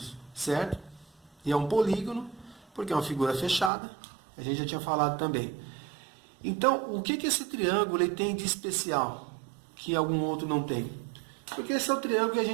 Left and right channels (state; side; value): drops out; left; at 3.7 s